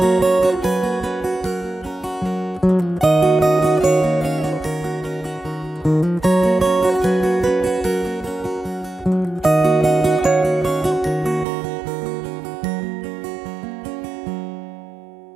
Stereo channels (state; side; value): drops out; left; at 11.5 s